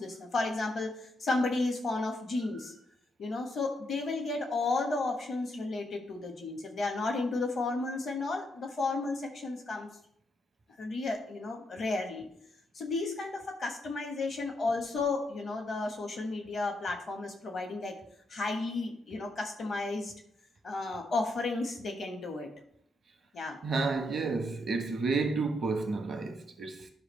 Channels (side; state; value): both; normal; correlation 0.78